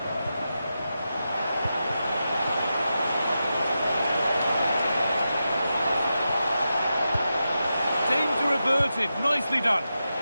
Danger averted. Nicely done.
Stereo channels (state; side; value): inverted; both; correlation -0.89